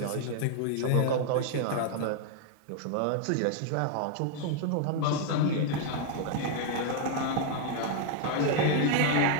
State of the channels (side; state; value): both; different; correlation 0.00